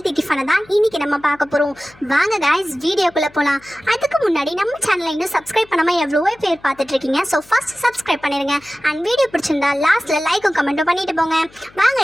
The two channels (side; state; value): left; noise; hum, 27 dB below the sound